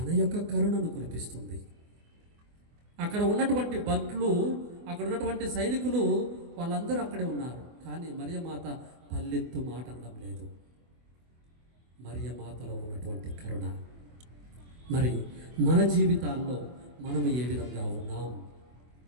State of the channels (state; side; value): late; left; 24 ms